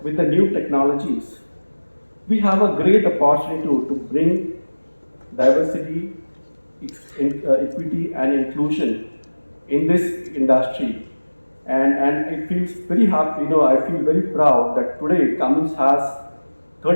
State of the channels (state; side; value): inverted; both; correlation -1.00